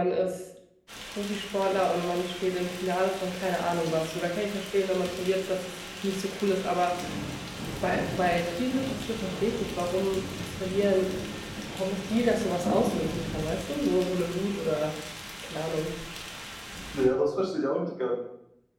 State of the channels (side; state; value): both; identical; correlation 1.00